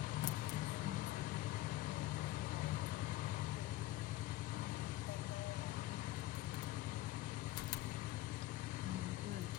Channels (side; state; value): right; quieter; 16.1 dB